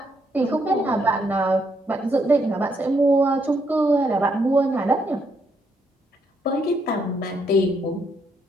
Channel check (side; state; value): both; normal; correlation 0.75